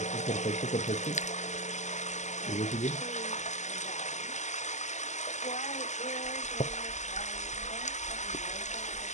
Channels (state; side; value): late; right; 0.34 ms